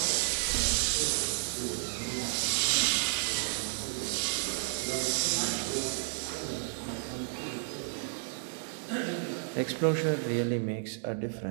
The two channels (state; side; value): silent; left; digital silence